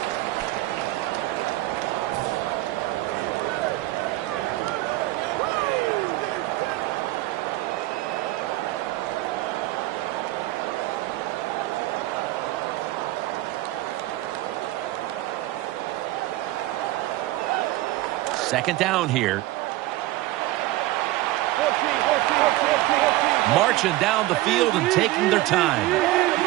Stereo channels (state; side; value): quieter; left; 17.5 dB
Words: Second down here. Marching down the field and taking their time.